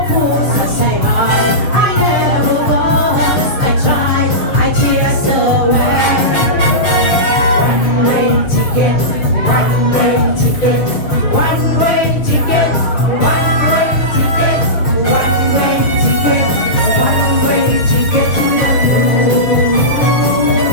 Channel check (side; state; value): right; late; 6.9 ms